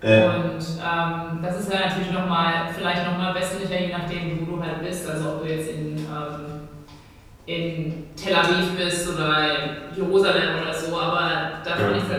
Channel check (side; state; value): both; identical; correlation 1.00